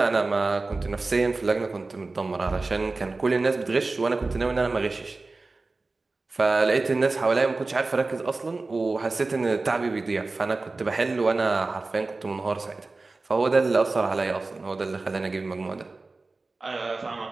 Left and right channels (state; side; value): quieter; left; 3.5 dB